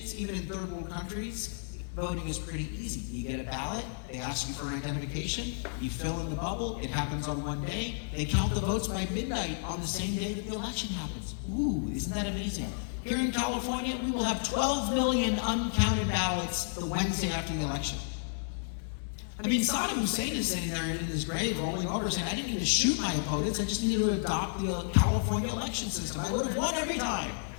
even in third world countries, voting is pretty easy. You get a ballot, they ask you for an identification, you fill in the bubble, it happens on one day, they count the votes by midnight on the same day that the election happens. Ooh, isn't that amazing? Here in California, we will have 12 million uncounted ballots the Wednesday after the election. I mean, Saddam Hussein is sitting there in his grave rolling over saying, I didn't need to shoot my opponents, I just needed to adopt the California election system. I would have won every time.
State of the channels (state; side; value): silent; right; digital silence